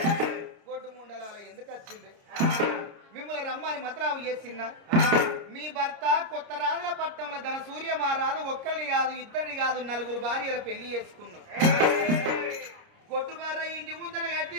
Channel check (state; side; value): late; left; 29 ms